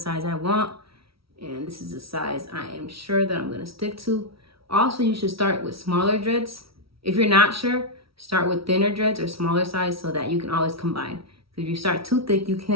I want, and this is the size I am sure that I'm gonna stick to. Also, you should start with smaller dreads. If you're not sure, start with thinner dreads or smaller size so that you can always combine. If you start too thick, you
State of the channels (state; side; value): late; left; 0.75 ms